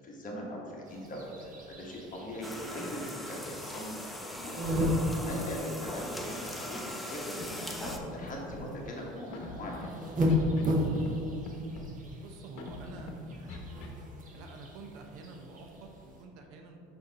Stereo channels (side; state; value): both; normal; correlation 0.51